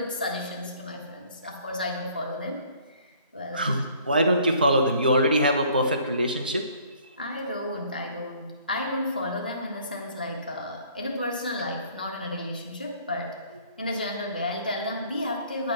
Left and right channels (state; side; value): inverted; both; correlation -0.57